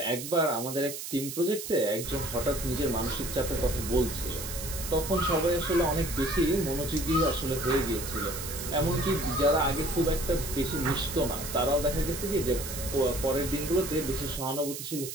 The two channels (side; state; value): right; noise; hiss, 8 dB below the sound